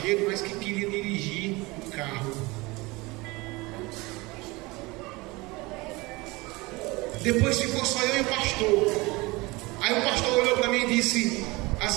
mas que queria dirigir o carro. Depois ficou só eu e o pastor. Aí o pastor olhou para mim e disse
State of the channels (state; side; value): quieter; left; 23.4 dB